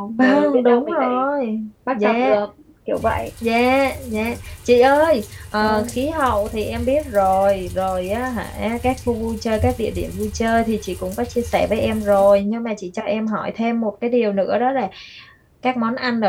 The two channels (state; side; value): identical; both; correlation 1.00